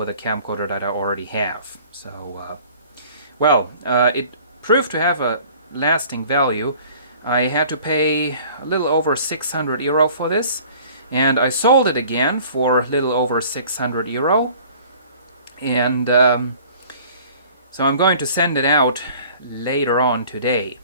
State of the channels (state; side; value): inverted; both; correlation -0.50